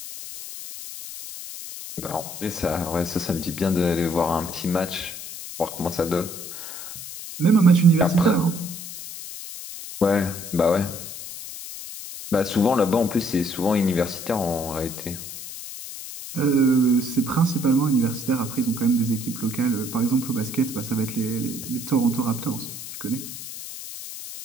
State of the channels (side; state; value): left; noise; hiss, 10 dB below the sound